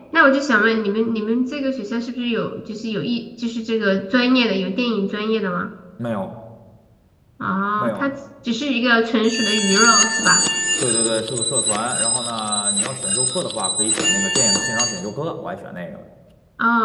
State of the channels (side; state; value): both; identical; correlation 1.00